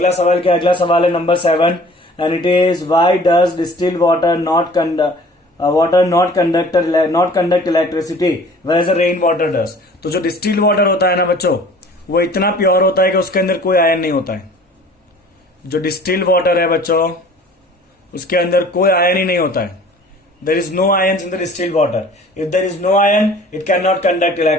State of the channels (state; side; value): normal; both; correlation 0.49